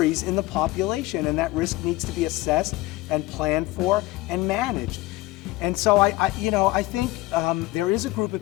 in the population, and that risk needs to be assessed and planned for and managed. And so I think there is a group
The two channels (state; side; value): quieter; right; 18.4 dB